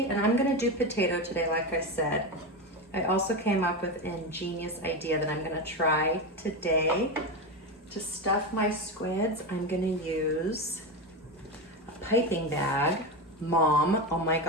and I'm gonna do potato today, like I said. I also came up with an ingenious idea that I'm gonna try today. To stuff my squids, I'm gonna use a piping bag. Mom, oh my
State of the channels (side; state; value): both; normal; correlation 0.16